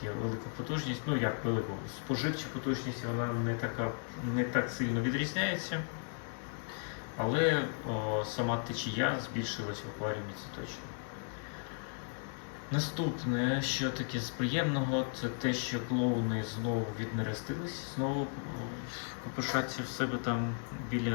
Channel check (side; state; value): right; silent; 54 dB below the other